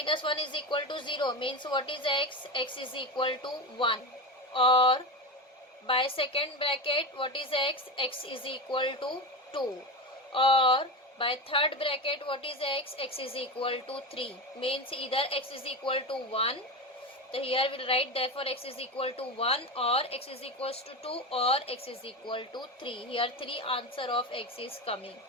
1 is equal to 0, means what is x? X is equal to 1. Or by second bracket, what is x? X is equal to 2. Or by third bracket, what is x? X is equal to 3. Means either x is equal to 1. So here we will write, therefore x is equal to 1, or x is equals to 2, or x is equal to 3. Here 3 answer of x is coming.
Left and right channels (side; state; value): both; normal; correlation 0.21